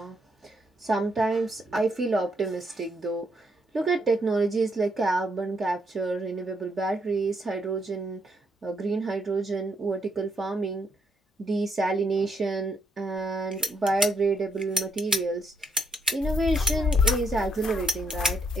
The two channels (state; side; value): normal; both; correlation 0.74